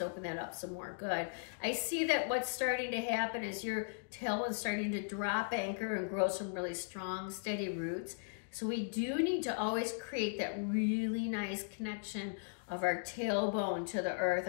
open that up some more. Good. I see that what's starting to happen is your tailbone's starting to drop anchor and grow some really strong, steady roots. So we do need to always create that really nice connection of our tailbone to the earth.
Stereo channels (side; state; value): right; silent; digital silence